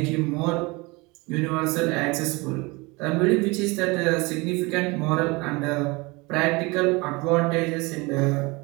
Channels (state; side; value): quieter; left; 25.2 dB